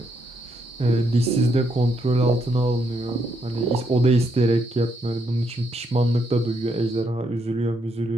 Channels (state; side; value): normal; both; correlation 0.76